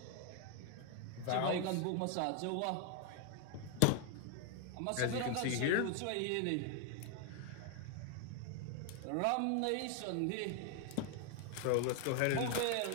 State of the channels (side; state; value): both; different; correlation 0.00